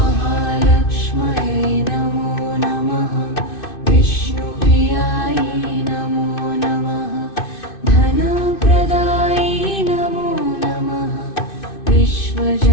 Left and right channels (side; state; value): right; late; 2.6 ms